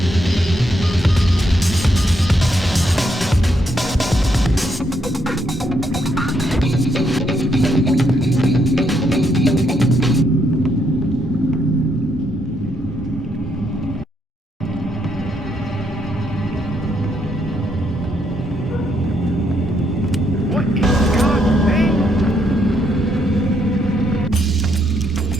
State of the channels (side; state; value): both; normal; correlation 0.76